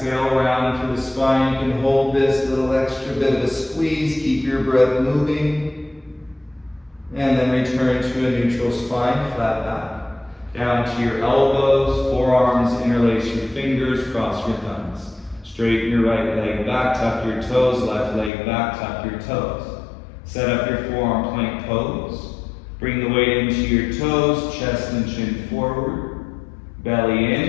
round through the spine. You can hold this little extra bit of a squeeze, keep your breath moving. And then return to a neutral spine, flat back. Down to your elbows, forearms, interlace your fingers, cross your thumbs. Straighten your right leg back, tuck your toes, left leg back, tuck your toes. Set up your forearm plank pose. Bring the weight into your toes, chest and chin forward, belly in,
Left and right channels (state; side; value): drops out; right; at 18.3 s